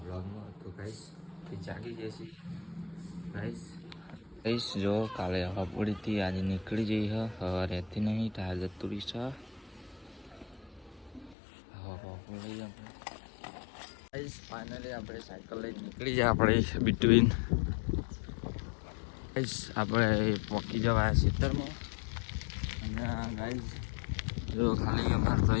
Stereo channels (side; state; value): right; drops out; at 11.4 s